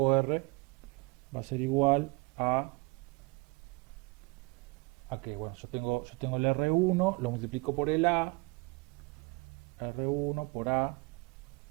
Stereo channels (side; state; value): left; quieter; 26.0 dB